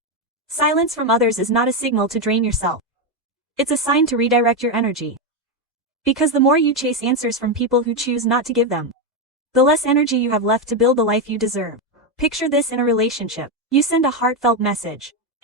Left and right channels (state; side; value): normal; both; correlation 0.07